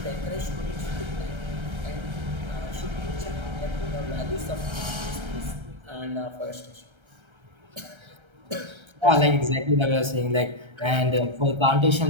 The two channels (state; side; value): late; left; 1.3 ms